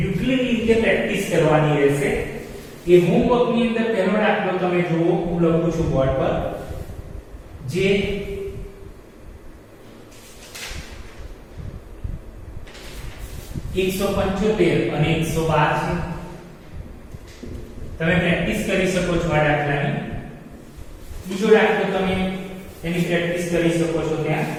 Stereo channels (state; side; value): identical; both; correlation 1.00